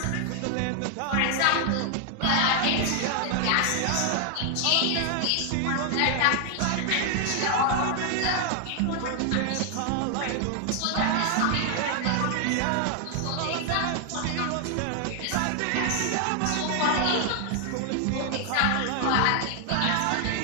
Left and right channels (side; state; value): both; different; correlation 0.00